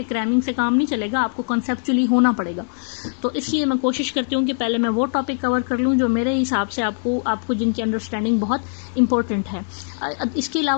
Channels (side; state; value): right; silent; digital silence